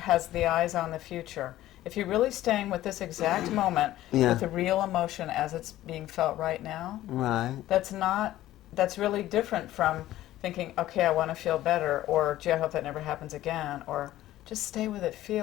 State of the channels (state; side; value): quieter; right; 14.5 dB